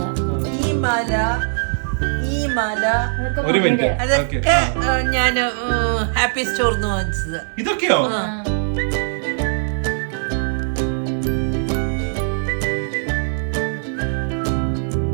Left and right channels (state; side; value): silent; left; 65 dB below the other